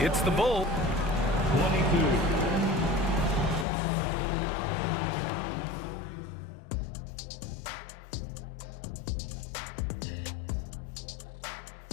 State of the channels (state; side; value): drops out; right; at 3.7 s